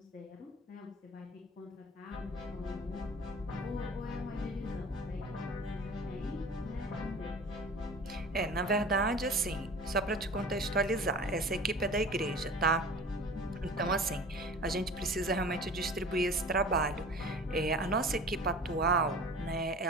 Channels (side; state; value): both; normal; correlation 0.40